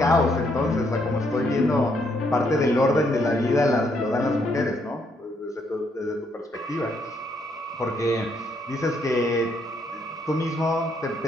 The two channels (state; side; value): normal; both; correlation 0.73